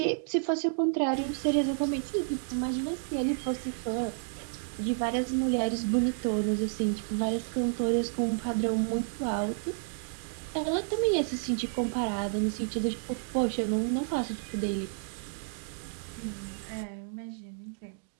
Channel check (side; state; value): left; silent; digital silence